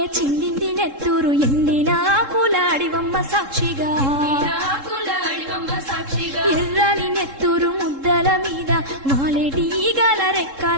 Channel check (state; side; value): late; left; 3.7 ms